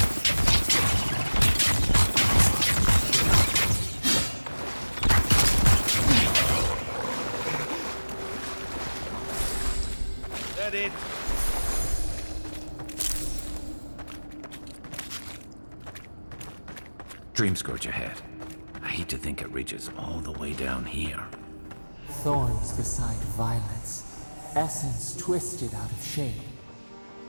It. Dream Scourge ahead. I hate to think it reaches all the way down here. Thorns beside violets, essence twisted out of shape.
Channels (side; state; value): both; inverted; correlation -1.00